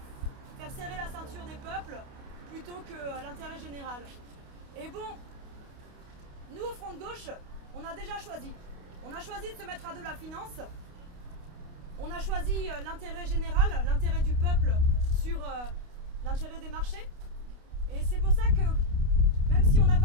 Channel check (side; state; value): left; late; 28 ms